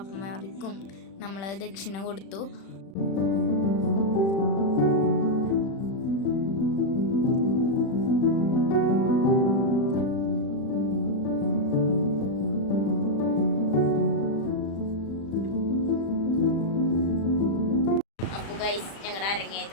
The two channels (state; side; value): late; right; 36 ms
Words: നമ്മൾ ദക്ഷിണ കൊടുത്തു. ഗൈസ് ഞങ്ങളുടെ